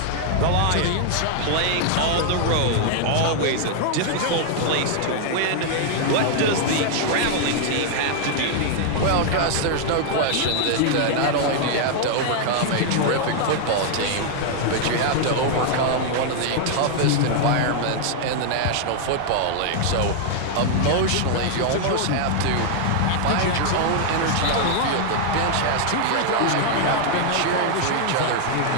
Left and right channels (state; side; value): different; both; correlation 0.00